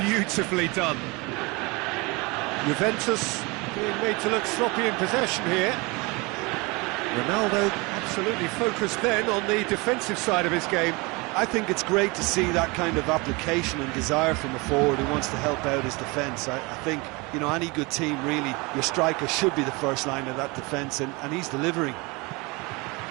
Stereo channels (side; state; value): left; quieter; 26.2 dB